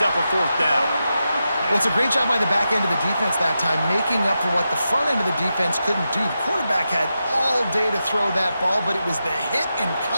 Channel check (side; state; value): both; inverted; correlation -0.89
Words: a 4th down. Well, it's a great job by the back end of the defense that time, making up for what the front end of the defense couldn't do. The quarterback had all day to throw that ball, but it was the hit and